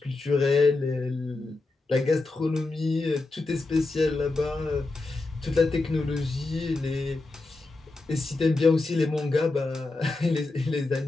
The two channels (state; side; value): quieter; right; 3.3 dB